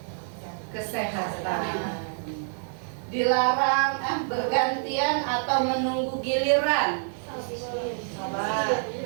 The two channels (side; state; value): left; silent; digital silence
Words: Kesehatan. Dilarang bergantian atau menunggu giliran.